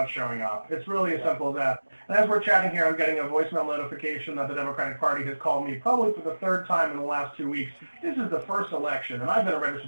showing up. It's really as simple as that. And as we're chatting here, I'm getting a voicemail notification that the Democratic Party has called me probably for the third time in the last 2 weeks. This is the first election, and I've been a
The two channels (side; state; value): both; inverted; correlation -1.00